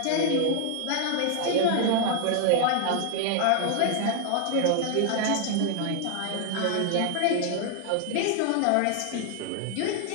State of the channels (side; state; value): both; different; correlation 0.00